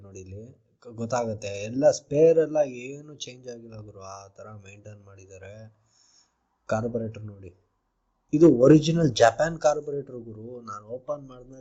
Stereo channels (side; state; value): both; identical; correlation 1.00